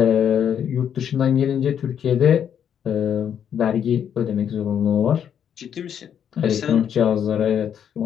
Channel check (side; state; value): right; quieter; 8.7 dB